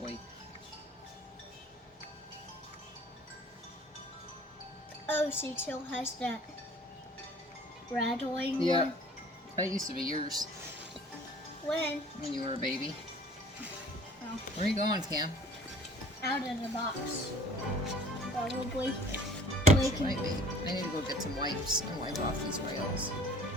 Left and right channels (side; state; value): both; normal; correlation 0.50